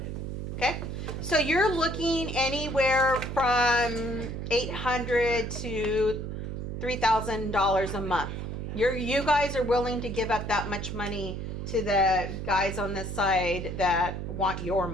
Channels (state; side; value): noise; right; hum, 5 dB below the sound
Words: Okay, so you're looking anywhere from $800 to $3,000 a month. You guys are willing to give up that much money to the guys on this side that want your